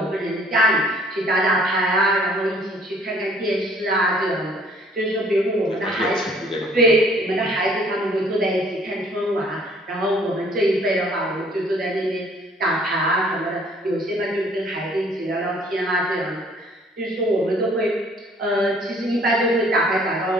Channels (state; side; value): normal; both; correlation 0.58